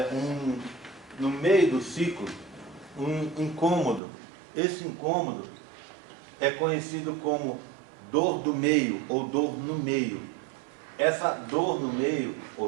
no meio do ciclo um incômodo. Esse incômodo é conhecido como dor do meio ou dor no meio. Essa dor no meio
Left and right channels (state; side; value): drops out; left; at 4.0 s